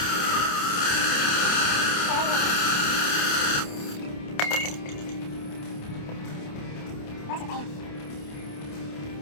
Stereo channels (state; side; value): late; right; 28 ms